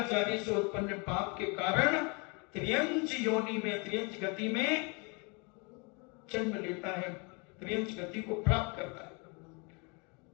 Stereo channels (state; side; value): quieter; right; 31.9 dB